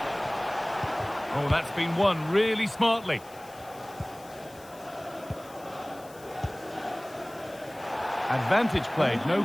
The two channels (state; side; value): noise; left; hiss, 22 dB below the sound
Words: Oh, that's been won really smartly. Advantage played, no